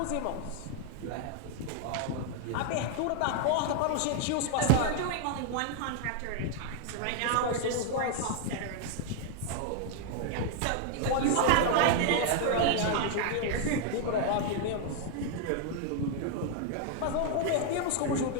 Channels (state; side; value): different; both; correlation 0.00